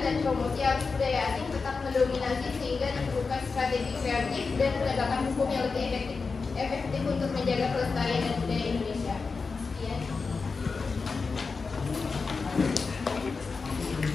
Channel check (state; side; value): quieter; right; 4.6 dB